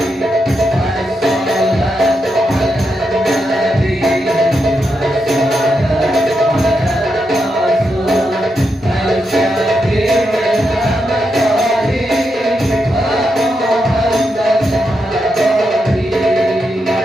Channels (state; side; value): normal; both; correlation 0.84